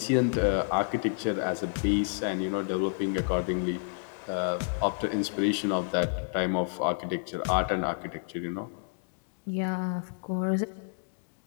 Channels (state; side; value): silent; right; digital silence